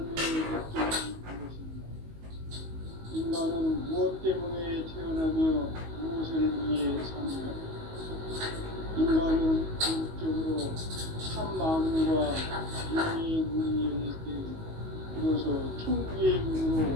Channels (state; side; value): late; left; 19 ms